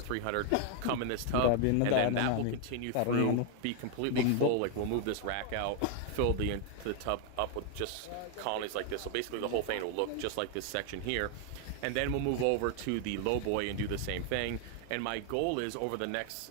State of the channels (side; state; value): both; different; correlation 0.00